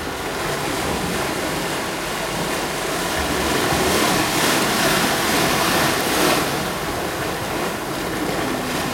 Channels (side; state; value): both; identical; correlation 1.00